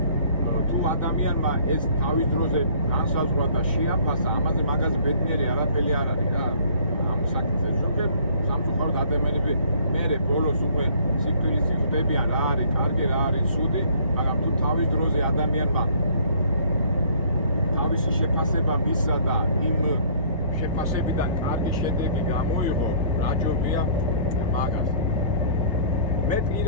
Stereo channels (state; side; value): inverted; both; correlation -0.55